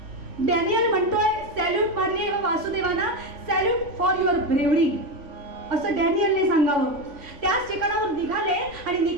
डॅनियल म्हणतोय, सॅल्यूट मारली वासुदेवांना, सॅल्यूट फॉर युअर ब्रेवरी असं डॅनियलने सांगावं. त्याच ठिकाणावर निघाले आणि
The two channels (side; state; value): left; late; 3.5 ms